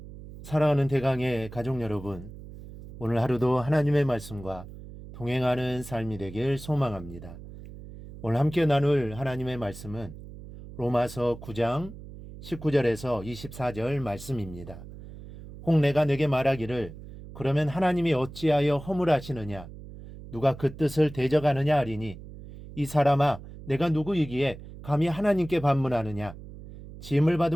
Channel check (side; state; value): right; noise; hum, 15 dB below the sound